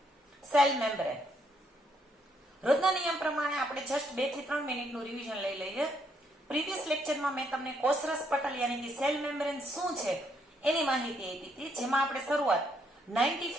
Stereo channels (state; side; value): normal; both; correlation 0.73